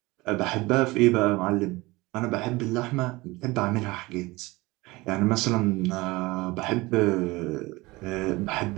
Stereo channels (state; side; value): quieter; left; 21.7 dB